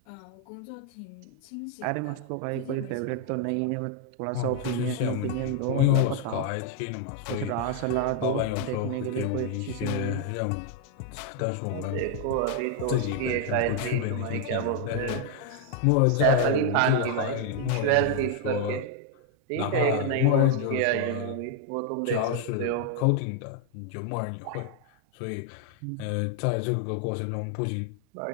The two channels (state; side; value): different; both; correlation 0.00